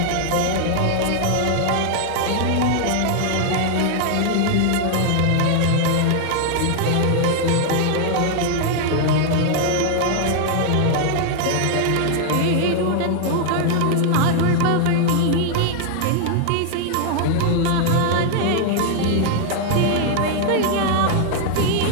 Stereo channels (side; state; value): both; different; correlation 0.00